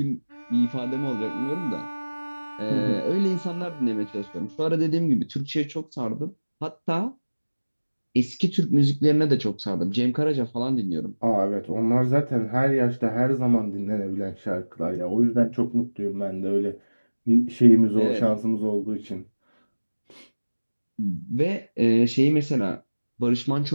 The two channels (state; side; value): inverted; both; correlation -1.00